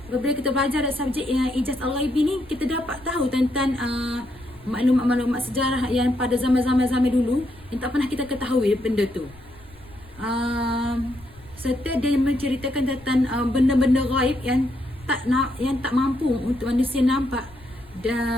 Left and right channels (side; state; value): left; noise; rumble, 24 dB below the sound